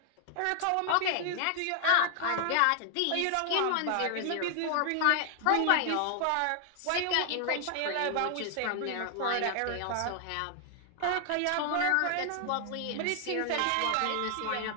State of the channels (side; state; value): both; different; correlation 0.00